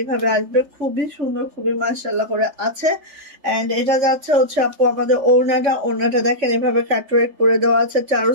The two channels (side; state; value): left; late; 3.4 ms